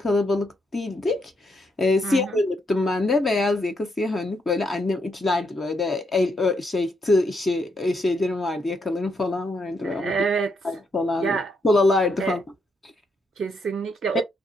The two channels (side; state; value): both; normal; correlation 0.78